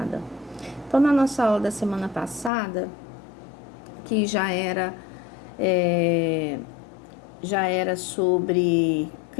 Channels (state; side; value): drops out; right; at 2.5 s